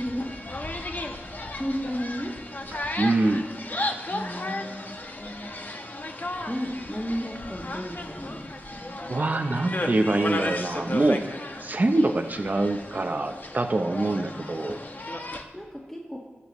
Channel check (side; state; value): both; normal; correlation 0.89